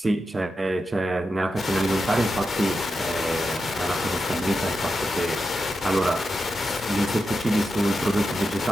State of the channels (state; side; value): normal; both; correlation 0.88